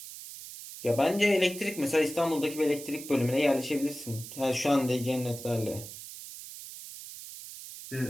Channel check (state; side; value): noise; right; hiss, 12 dB below the sound